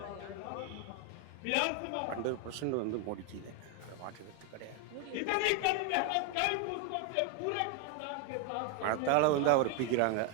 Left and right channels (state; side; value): different; both; correlation 0.01